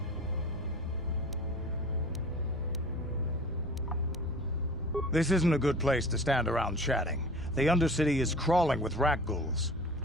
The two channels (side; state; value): both; normal; correlation 0.41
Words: This isn't a good place to stand around chatting. The Undercity is crawling with rat ghouls.